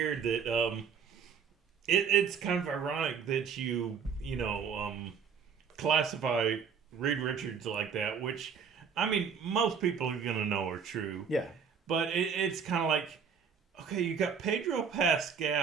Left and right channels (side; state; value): left; quieter; 6.7 dB